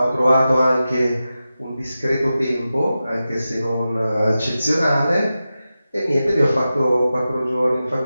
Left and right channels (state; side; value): inverted; both; correlation -0.92